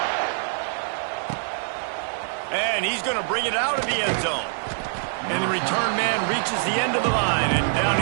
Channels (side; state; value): left; silent; digital silence